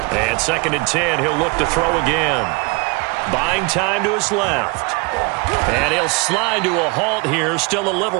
And 2nd and 10, he'll look to throw again. Buying time to his left. And he'll slide to a halt here, still a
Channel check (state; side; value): quieter; left; 28.8 dB